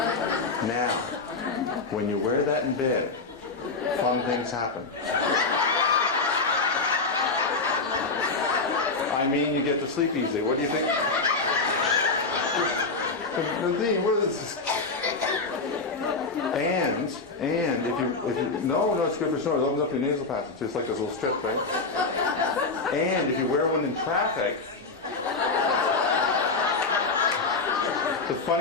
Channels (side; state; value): right; quieter; 4.0 dB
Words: Now, when you wear that in bed, fun things happen. I mean, you get to sleep easy. What do you think? Nadine, what is this? And if you no, it's good for snoring. It opens up your nasal passage, just like this little strip, right? And if you wear one in traffic, the